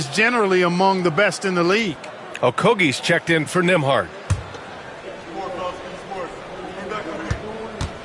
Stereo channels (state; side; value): identical; both; correlation 1.00